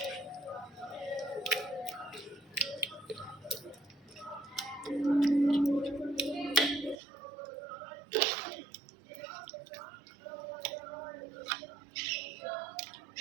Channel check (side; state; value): left; drops out; at 7.0 s